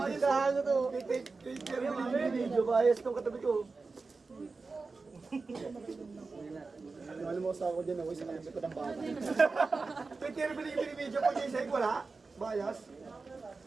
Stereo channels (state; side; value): quieter; left; 4.1 dB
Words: ko to. Video bias tong katabi ko. Alam mo sa ako dyan ako sa kalapit ko ng bata. Pero binibidyo ko dyan sa'yo, wala? Bias?